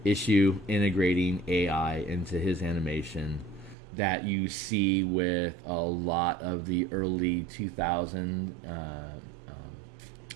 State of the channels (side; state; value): left; drops out; at 3.8 s